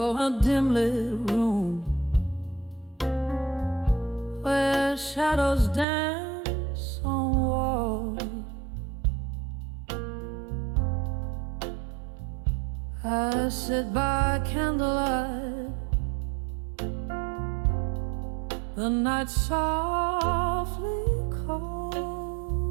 a dim lit room where shadows dance on walls. I sit by candlelight, the night softly calls.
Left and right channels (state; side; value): drops out; left; at 5.9 s